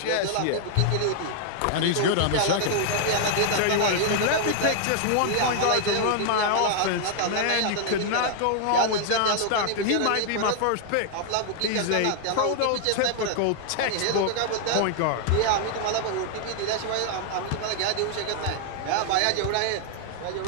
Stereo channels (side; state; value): both; different; correlation 0.00